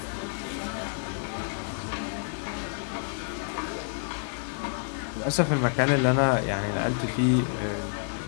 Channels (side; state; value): right; silent; 59 dB below the other